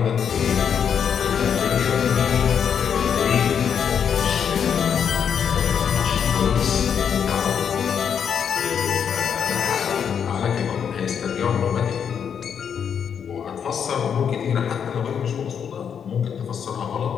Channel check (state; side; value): quieter; right; 7.6 dB